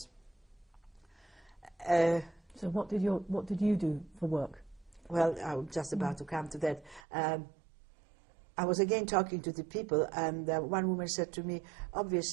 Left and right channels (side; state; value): left; drops out; at 7.0 s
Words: So what did you do for work? Well, I'm just about to come to that. I was again talking to the people, and one woman said to me,